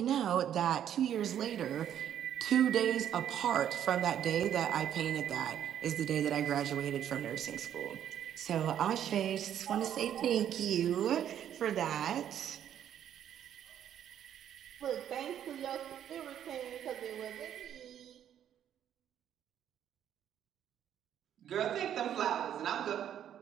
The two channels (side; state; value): left; quieter; 10.1 dB